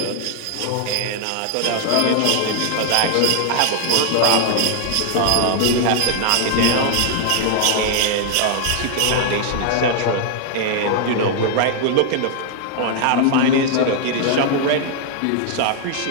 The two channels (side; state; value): both; different; correlation 0.00